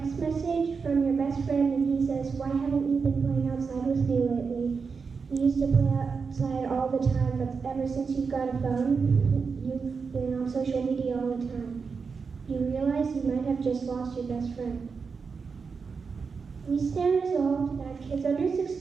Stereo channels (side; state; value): left; quieter; 5.3 dB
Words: message from your best friend and he says, "Why haven't you been playing outside with me lately? You used to play outside all the time, but ever since you've got a phone, you've been on social media all the time." You realize you might have just lost your best friend. We stand resolved that kids under